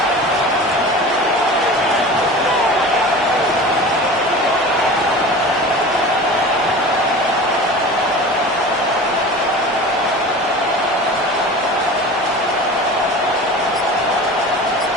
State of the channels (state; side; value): normal; both; correlation 0.36